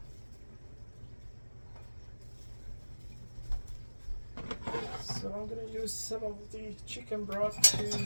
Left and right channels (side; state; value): both; inverted; correlation -1.00